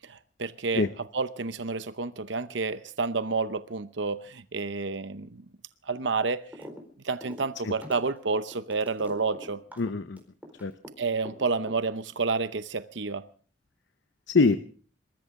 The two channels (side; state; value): both; normal; correlation -0.16